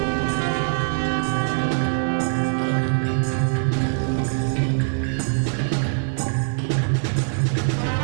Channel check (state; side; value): silent; left; digital silence